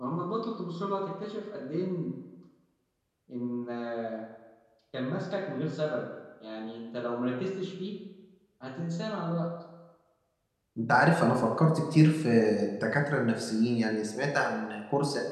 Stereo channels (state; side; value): identical; both; correlation 1.00